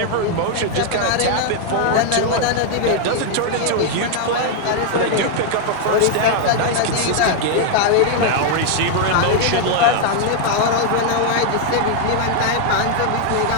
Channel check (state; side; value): different; both; correlation 0.00